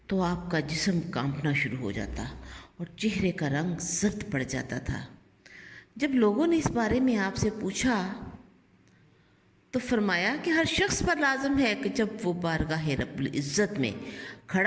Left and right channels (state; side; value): identical; both; correlation 1.00